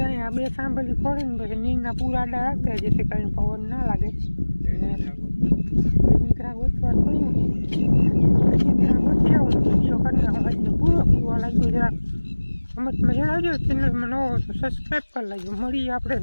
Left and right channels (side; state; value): both; inverted; correlation -1.00